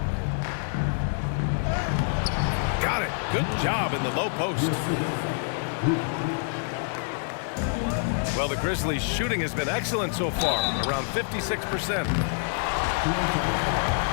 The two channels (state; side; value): silent; right; 60 dB below the other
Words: Got it. Good job in the low post. Well, the Grizzlies' shooting has been excellent so far, around 56%.